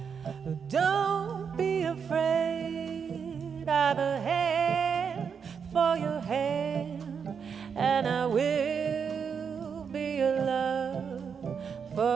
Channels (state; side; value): quieter; left; 6.6 dB